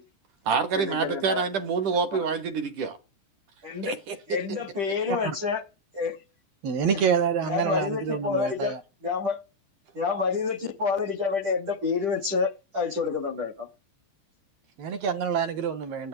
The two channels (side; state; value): left; late; 10 ms